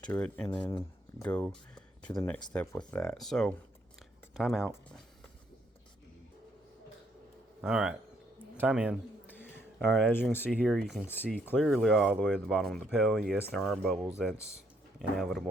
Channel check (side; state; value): both; normal; correlation 0.70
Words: to it, and then go to the next step with that. So, time out. Alright, time in. Alright, as you can see here, you can see clearly all the way to the bottom of the pail. Yes, there are bubbles. That's